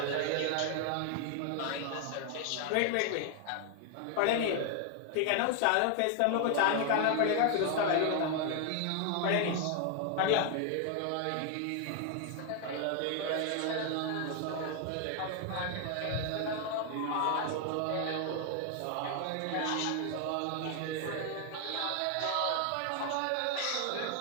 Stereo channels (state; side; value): different; both; correlation 0.00